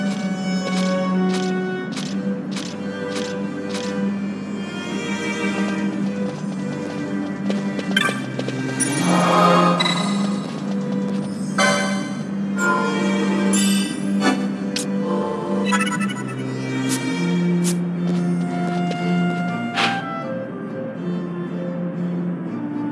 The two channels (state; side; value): identical; both; correlation 1.00